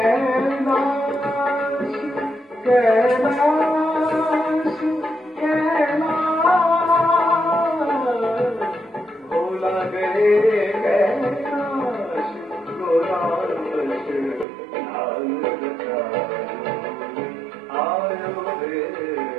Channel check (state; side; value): drops out; left; at 14.5 s